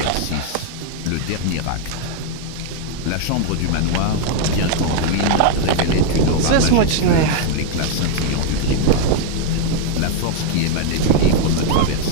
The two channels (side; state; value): both; different; correlation 0.00